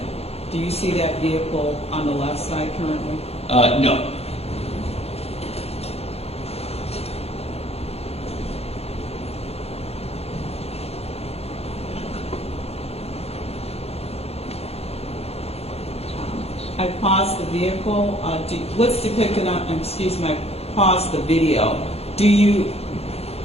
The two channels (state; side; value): late; right; 0.29 ms